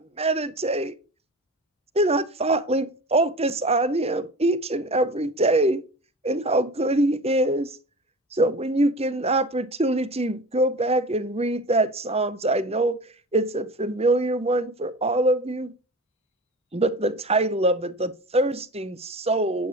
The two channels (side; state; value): both; normal; correlation 0.34